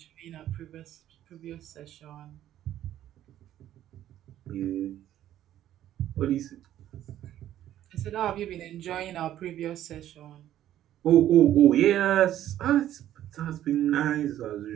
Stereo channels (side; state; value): left; quieter; 12.2 dB